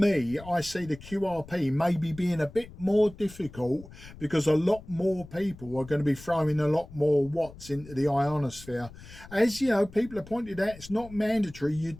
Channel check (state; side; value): noise; left; rumble, 18 dB below the sound